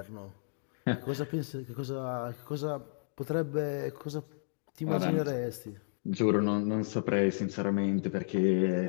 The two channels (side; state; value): right; silent; digital silence